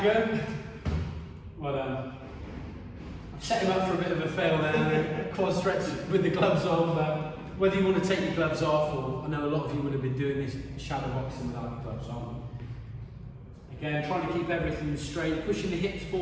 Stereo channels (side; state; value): both; identical; correlation 1.00